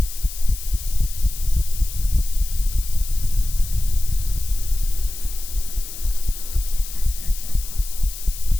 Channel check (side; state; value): left; noise; hiss, 11 dB below the sound